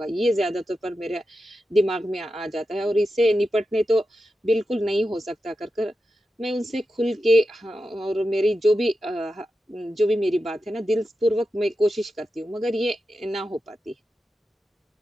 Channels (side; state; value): both; normal; correlation 0.90